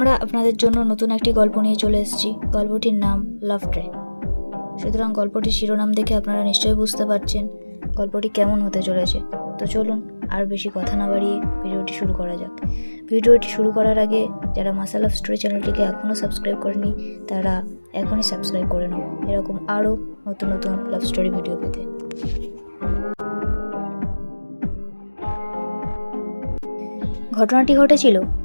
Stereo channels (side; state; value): both; inverted; correlation -1.00